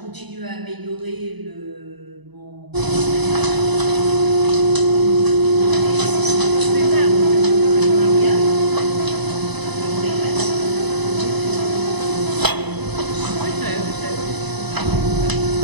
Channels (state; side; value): late; left; 1.0 ms